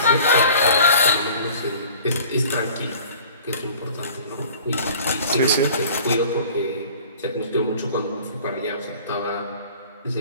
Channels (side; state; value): both; inverted; correlation -0.47